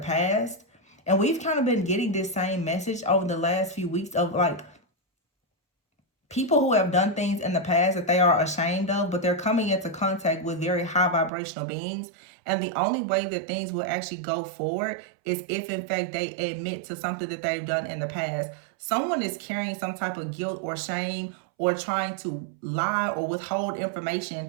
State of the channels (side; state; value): left; drops out; at 11.3 s